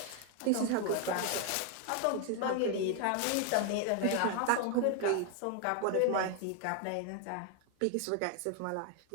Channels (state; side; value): different; both; correlation 0.00